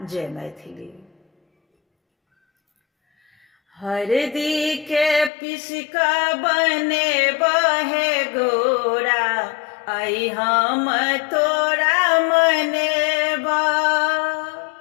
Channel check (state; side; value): drops out; right; at 5.3 s